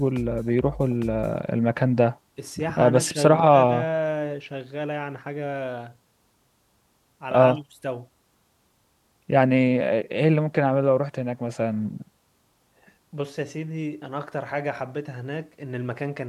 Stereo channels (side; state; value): both; identical; correlation 1.00